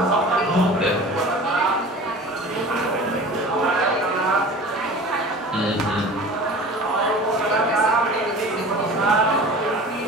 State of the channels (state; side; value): normal; both; correlation 0.39